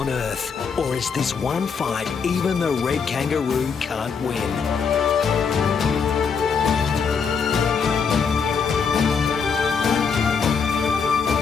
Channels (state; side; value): quieter; right; 5.9 dB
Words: earth? Or is this one fight even the red kangaroo can't win?